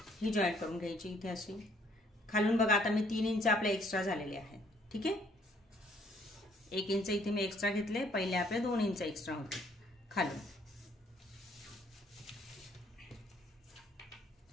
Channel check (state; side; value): normal; both; correlation 0.64